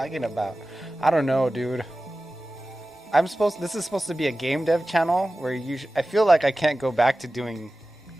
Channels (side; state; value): both; normal; correlation 0.95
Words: about? I don't know, dude. This is supposed to be a game dev channel where I feel like I can't go back to doing